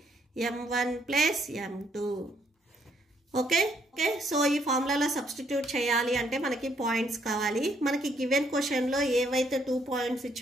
M1 plus M2 okay so ఈ ఫార్ములాలో substitute చేయాలి అంటే మనకి points కావాలి మనకి given క్వశ్చన్లో ఏవైతే 2 points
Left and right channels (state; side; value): normal; both; correlation 0.70